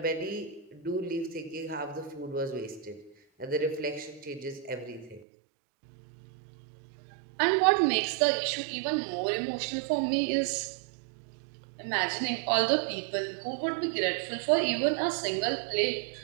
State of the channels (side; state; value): left; drops out; at 5.2 s